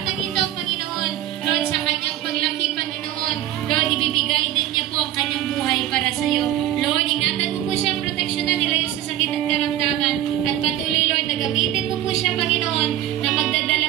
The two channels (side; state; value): left; quieter; 12.6 dB